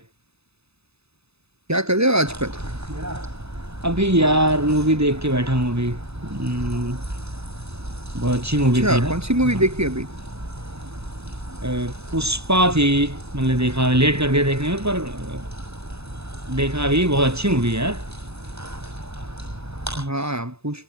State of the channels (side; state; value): left; late; 0.79 ms